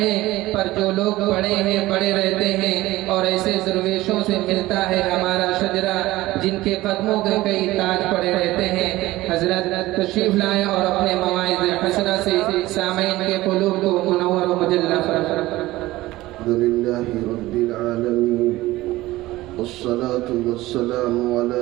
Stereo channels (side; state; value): left; quieter; 17.7 dB